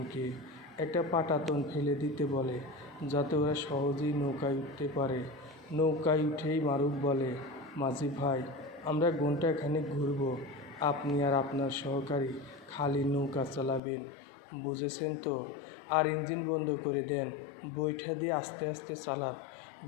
একটা পাটাতন ফেলে দিতে বলে, যাতে ওরা সহজেই নৌকায় উঠতে পারে। নৌকায় উঠেই মারুফ বলে, মাঝি ভাই, আমরা ঘণ্টাখানেক ঘুরব। আপনি আর আপনার সহকারী খালি নৌকা চালাবেন, বুঝেছেন তো? আর ইঞ্জিন বন্ধ করে দেন, বৈঠা দিয়ে আস্তে আস্তে চালান।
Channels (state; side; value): drops out; right; at 13.8 s